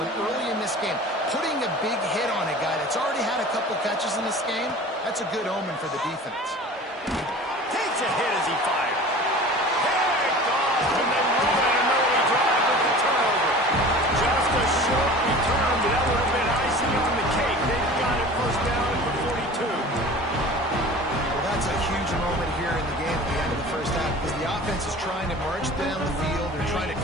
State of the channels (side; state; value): both; normal; correlation 0.40